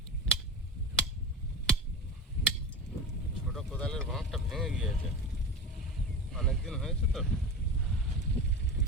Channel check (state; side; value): normal; both; correlation 0.30